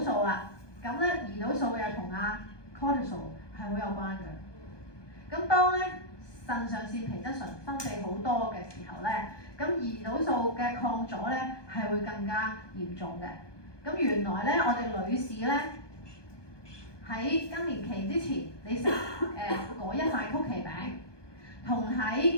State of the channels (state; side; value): late; right; 1.2 ms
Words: 素啦。咁咧胰島素又同阿 cortisol 係好有關嘅。咁當咧腎上腺皮質醇分泌好多嘅時候咧，咁胰島素嘅抗阻咧係會更加嚴重嘅。咁原來咧我哋女士咧喺更年期之前，你食嗰一塊曲奇餅，同